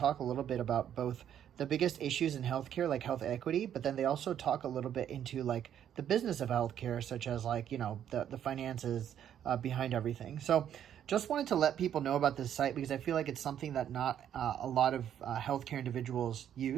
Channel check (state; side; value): quieter; left; 9.9 dB